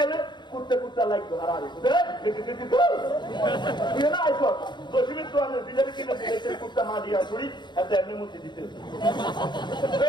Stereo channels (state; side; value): late; right; 0.22 ms